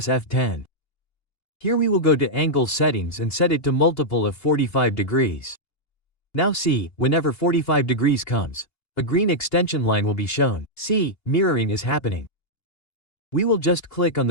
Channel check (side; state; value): right; late; 2.8 ms